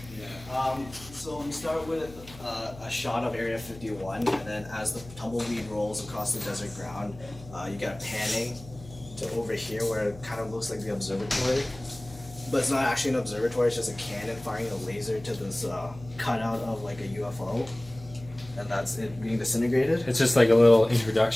So we start with a shot of Area 51, and then as the tumbleweed rolls across the desert ground, you get a panning to over here where it kind of looks like the observatory. But it's not actually an observatory, it's just a cannon firing a laser to this cutout of like a UFO. And that's it being disintegrated. It's just like a little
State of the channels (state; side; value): noise; left; hum, 17 dB below the sound